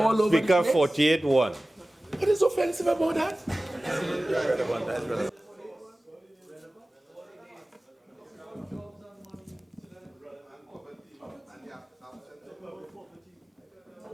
over Speaker, the place. 48-1. What is offensive about that?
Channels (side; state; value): both; normal; correlation 0.97